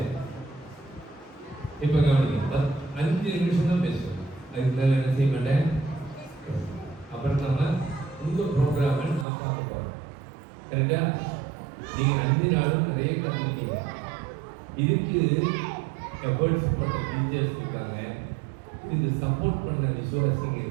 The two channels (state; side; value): drops out; left; at 9.2 s